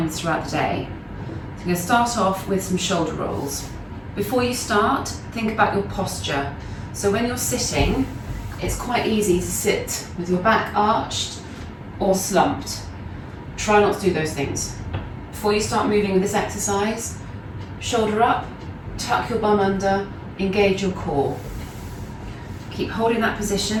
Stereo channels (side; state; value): both; identical; correlation 1.00